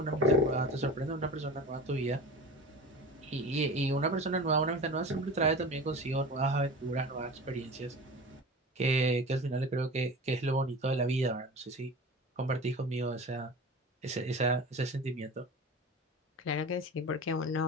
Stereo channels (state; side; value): normal; both; correlation 0.35